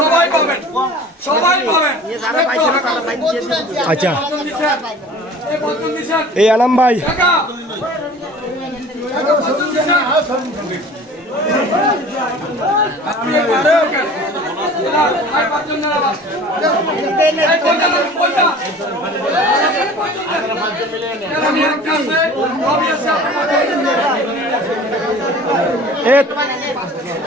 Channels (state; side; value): normal; both; correlation 0.44